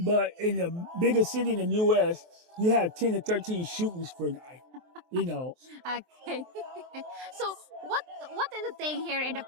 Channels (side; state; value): left; late; 23 ms